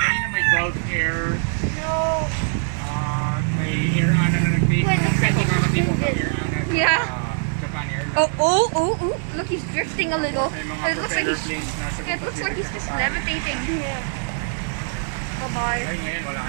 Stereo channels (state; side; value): silent; left; 64 dB below the other